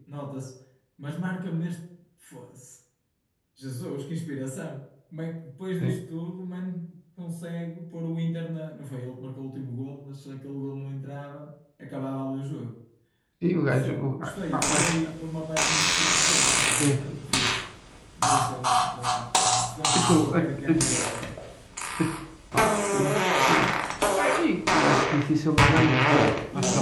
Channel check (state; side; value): identical; both; correlation 1.00